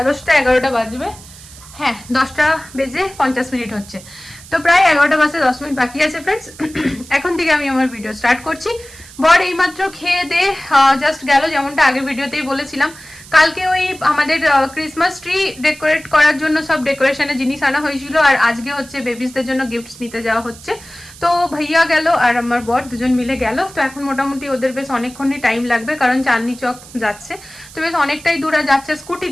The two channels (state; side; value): noise; right; hiss, 19 dB below the sound